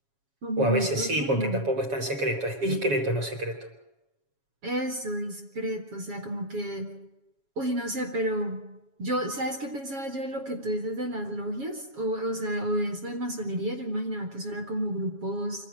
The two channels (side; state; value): left; late; 7.2 ms